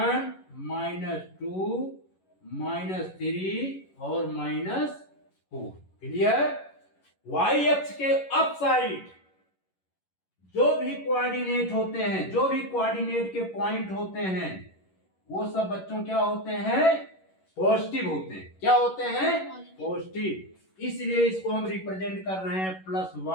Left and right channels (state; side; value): late; right; 11 ms